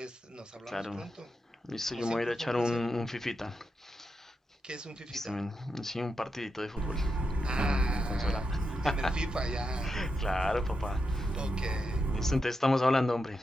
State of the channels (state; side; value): normal; both; correlation 0.86